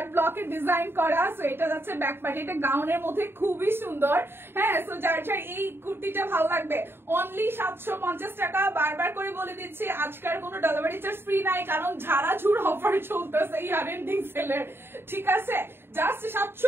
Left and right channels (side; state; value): left; late; 0.11 ms